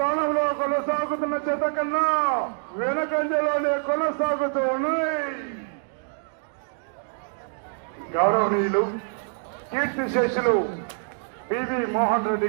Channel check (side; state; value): left; silent; digital silence